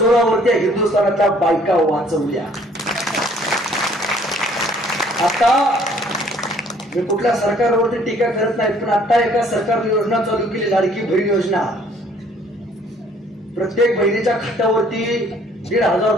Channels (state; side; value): normal; both; correlation 0.59